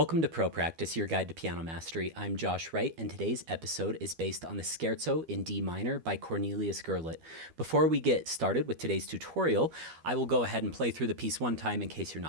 to Pro Practice, your guide to piano mastery. I'm Josh Wright, and today's episode is based on the Scherzo in D minor by Cornelius Gurlitt. Before we get started with today's tutorial, I will go ahead and play through the piece one time in case you're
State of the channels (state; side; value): late; left; 12 ms